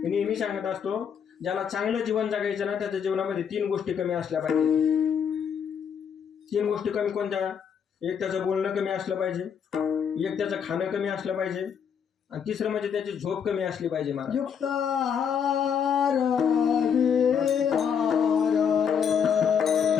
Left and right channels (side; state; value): right; quieter; 7.4 dB